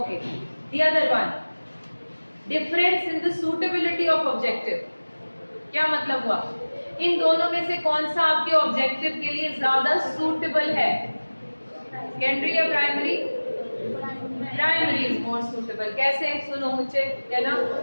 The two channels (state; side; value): inverted; both; correlation -1.00